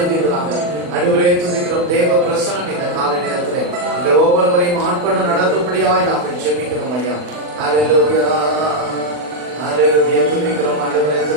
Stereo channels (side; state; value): left; late; 40 ms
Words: ஆண்டவரே துதிக்கிறோம். தேவ பிரசனம் இந்த காலை நேரத்திலே எங்கள் ஒவ்வொருவரையும் ஆட்கொண்டு நடத்தும்படியாய் நாங்கள் ஜெபிக்கிறோம் ஐயா. ஹல்லேலூயா ஹல்லேலூயா. துதிக்கிறோம் ஆண்டவரே,